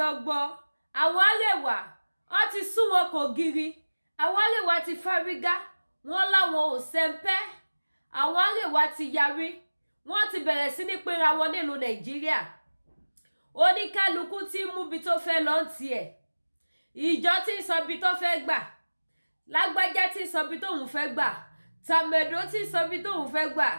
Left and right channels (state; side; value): inverted; both; correlation -1.00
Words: gbọ́, àwọn àlèwà wọ́n ti sún wọn kò giri, àwọn àlèwà ti fárígá, wọ́n láwọn ò sẹ́ńpẹ́, àwọn àlèwà ti yarí, wọ́n ti bẹ̀rẹ̀ sí ní pera wọn nílùú Nàìjíríà. Oníkálukú tí ń mú bi tó fẹ́ lọ ń tiẹ̀, ìjọ tí ń sọ bi tó fẹ́ gbà, lágbájá tí ń sọ bi tóun fẹ́ gbà, tàmẹ̀dó tí ń sọ bi tóun fẹ́ gbà,